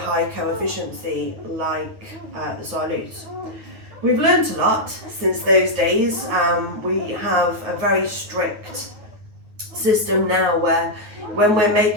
coefficiency like the Siamese. We've learned a lot since those days. We have a very strict system now where when we're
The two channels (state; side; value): late; left; 9.5 ms